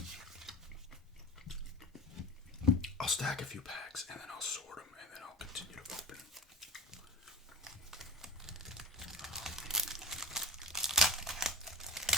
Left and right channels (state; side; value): normal; both; correlation 0.33